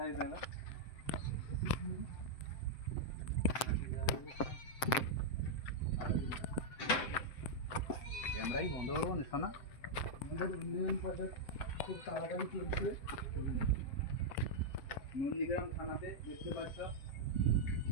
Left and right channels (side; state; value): right; late; 7.7 ms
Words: যায় না ক্যামেরাই বন্ধ করবো না শোনা। আমাদের উন্নয়ন প্রজেক্ট খুব তাড়াতাড়ি চলছে। নন্দীগ্রাম থানাতে দেখতে পাচ্ছ